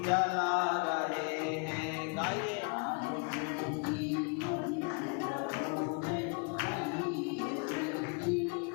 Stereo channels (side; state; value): right; quieter; 36.1 dB